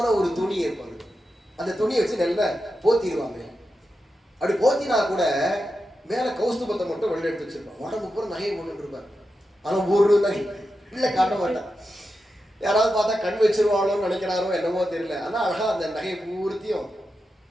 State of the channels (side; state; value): both; normal; correlation 0.89